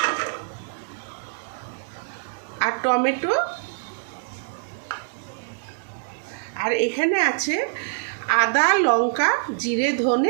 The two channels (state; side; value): silent; left; digital silence